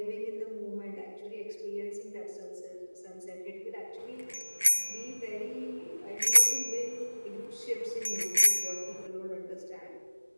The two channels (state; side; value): inverted; both; correlation -1.00